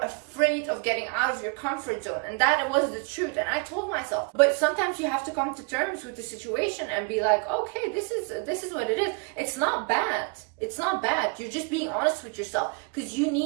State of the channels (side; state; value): left; quieter; 33.6 dB